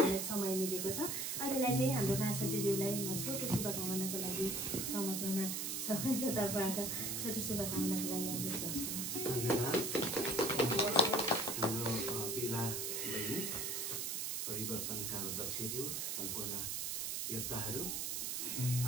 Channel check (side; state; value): right; noise; hiss, 1 dB below the sound